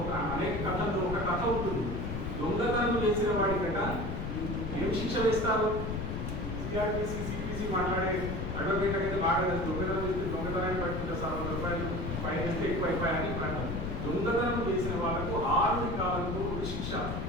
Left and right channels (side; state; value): left; noise; rumble, 3 dB below the sound